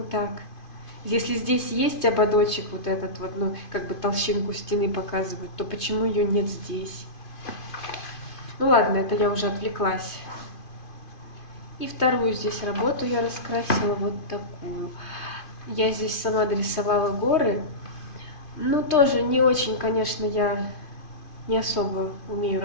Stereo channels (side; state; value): right; late; 2.5 ms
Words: так? Если здесь есть ободочек вот этот вот, ну, как бы толщинку стены показывает, то почему ее нет здесь? Ну ладно, это я уже отвлеклась. И вторую здесь работу я раскрасила вот такую. Я здесь сама дорисовала горы. Ну, тоже не очень, конечно, я не особо умею